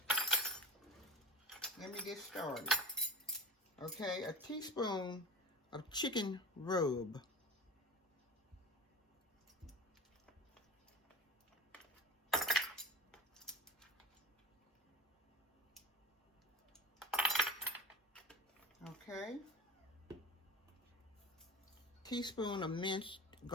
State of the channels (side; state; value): both; normal; correlation 0.40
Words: let me get started. Okay, a teaspoon of chicken rub. Okay. Teaspoon of minced